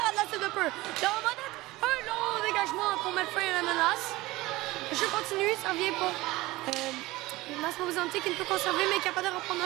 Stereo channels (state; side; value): quieter; left; 19.5 dB